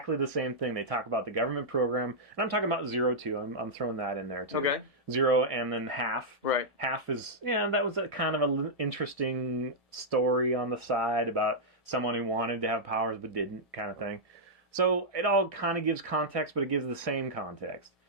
the same thing. They talk about the government program, and I'm talking about 0 too. I'm throwing that in there too. Okay. 0 and then half. Right. Half is, that was a kind of an interesting story on the side about someone who wanted to have powers but didn't, kind of thing. So it all kind of gives context, but it gives the same context.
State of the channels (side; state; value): both; normal; correlation -0.09